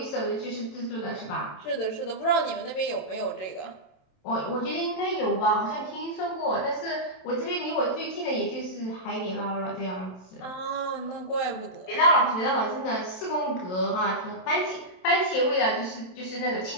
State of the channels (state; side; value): late; right; 27 ms